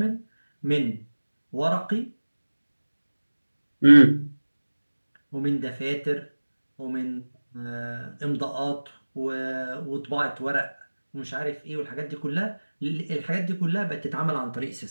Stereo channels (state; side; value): inverted; both; correlation -1.00